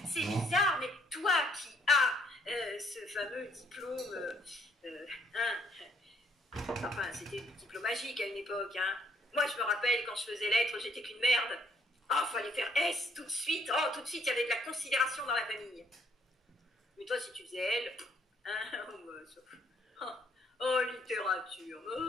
C'est bizarre, mais toi qui as ce fameux diplôme... enfin, c'était le diplôme magique à une époque, hein. Moi, je me rappelle, quand je faisais lettres, j'étais qu'une merde. Oh, fallait faire S tout de suite. Oh, tout de suite, il y avait de la considération dans la famille. Mais toi, si tu faisais L... Hein? Oh, littérature.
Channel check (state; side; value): normal; both; correlation 0.67